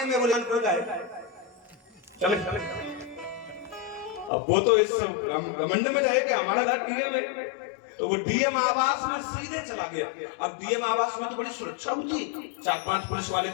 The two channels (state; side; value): drops out; right; at 4.3 s